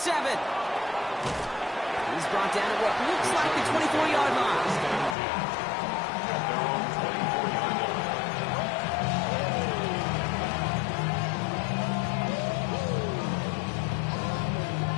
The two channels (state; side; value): drops out; right; at 5.2 s